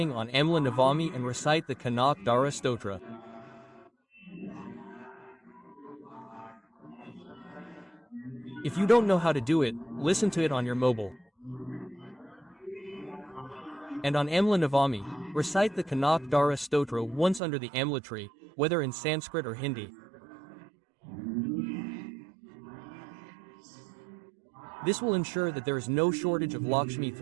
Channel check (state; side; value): drops out; left; at 17.4 s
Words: on Amla Navami and recite the Kanak Dara Stotra. If you don't know how to do it, listen to it on your mobile. And on Amla Navami, recite the Kanak Dara Stotra once under the Amla tree, whether in Sanskrit or Hindi. This will ensure that there is no shortage of Lakshmi